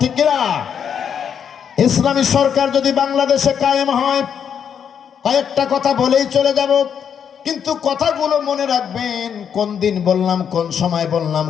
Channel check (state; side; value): quieter; right; 7.9 dB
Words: ঠিক কিনা? ইসলামী সরকার যদি বাংলাদেশে কায়েম হয়, কয়েকটা কথা বলেই চলে যাব, কিন্তু কথাগুলো মনে রাখবেন। কোন দিন বললাম, কোন সময় বললাম,